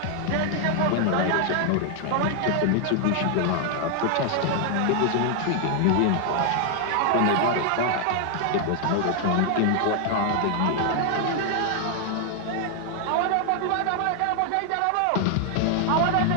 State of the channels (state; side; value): different; both; correlation 0.00